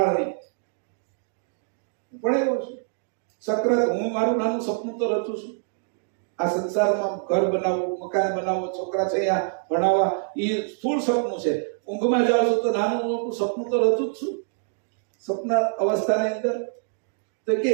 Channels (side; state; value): left; silent; digital silence